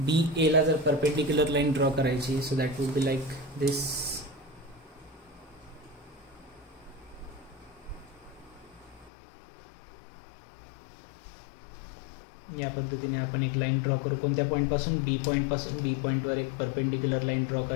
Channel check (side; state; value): right; drops out; at 9.1 s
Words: एला जर परपेंडिक्युलर लाईन ड्रॉ करायची, so that would be like this. या पद्धतीने आपण एक लाईन ड्रॉ करू. कोणत्या पॉईंटपासून, बी पॉईंटपासून. बी पॉईंटवर एक परपेंडिक्युलर लाईन ड्रॉ